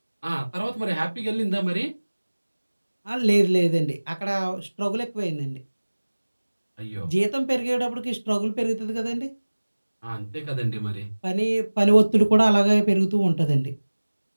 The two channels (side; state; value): both; inverted; correlation -1.00